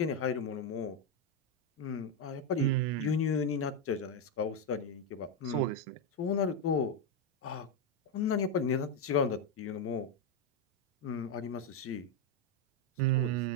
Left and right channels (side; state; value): both; normal; correlation 0.05